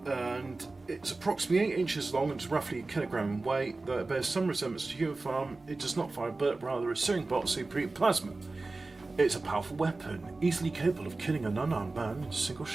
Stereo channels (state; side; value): quieter; left; 3.4 dB